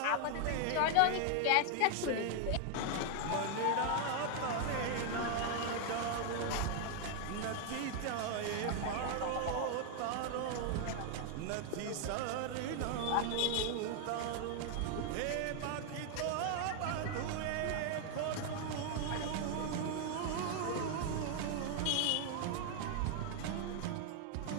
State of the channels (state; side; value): different; both; correlation 0.00